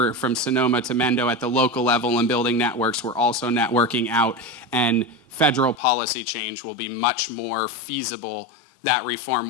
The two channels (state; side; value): drops out; right; at 5.8 s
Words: from Sonoma to Mendo at the local level and building networks, we're also networking out, and federal policy change will be much more feasible. That